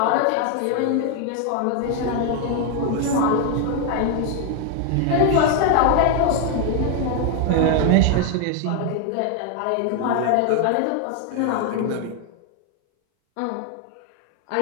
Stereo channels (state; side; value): different; both; correlation 0.01